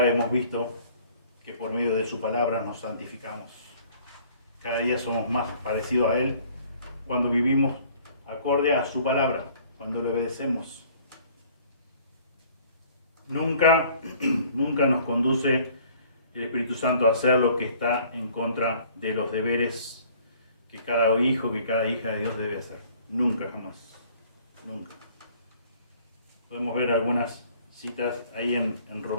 hemos visto que por medio de su palabra nos santificamos. Cada día somos más parecidos a Él cuando vivimos acorde a su palabra, cuando le obedecemos. Nunca nos conduce el Espíritu Santo a hacer lo que está en contra de los deberes que cada hijo, que cada hija de Dios debe hacer. Nunca, jamás. Nunca. Podemos ver algunas citas ahí en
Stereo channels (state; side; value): inverted; both; correlation -0.55